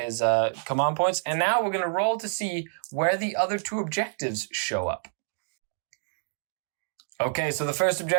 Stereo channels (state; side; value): silent; left; digital silence